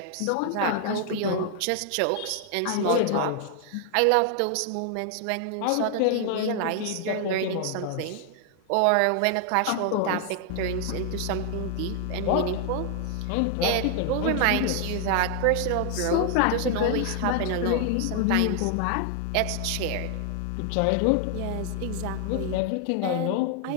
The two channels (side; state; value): both; different; correlation 0.00